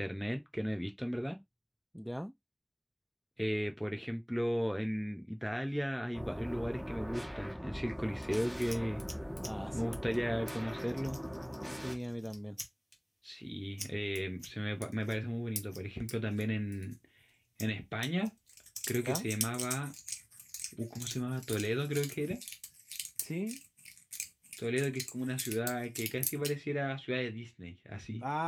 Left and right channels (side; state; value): both; identical; correlation 1.00